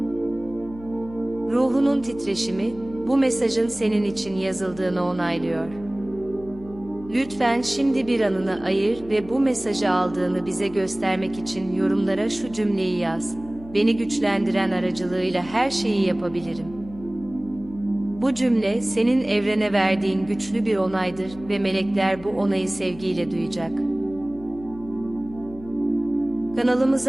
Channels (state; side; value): noise; left; hum, 18 dB below the sound